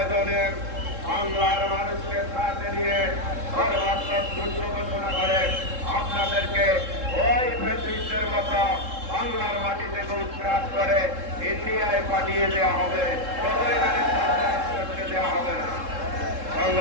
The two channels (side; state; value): left; late; 3.7 ms